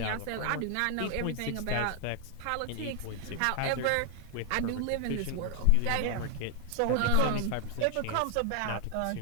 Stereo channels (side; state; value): both; different; correlation 0.00